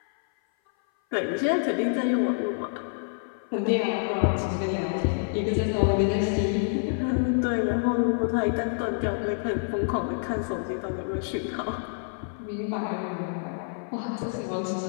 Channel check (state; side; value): silent; right; 56 dB below the other